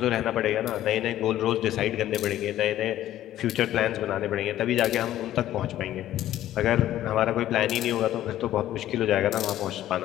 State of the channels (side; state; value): right; quieter; 13.0 dB